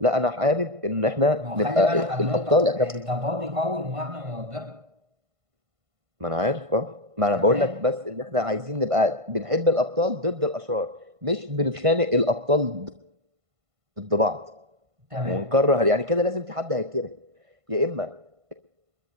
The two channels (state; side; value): late; left; 1.5 ms